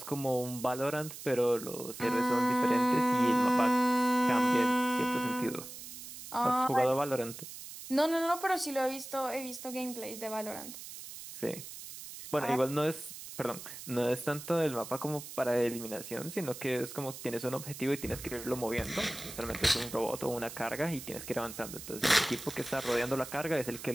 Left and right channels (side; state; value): right; noise; hiss, 12 dB below the sound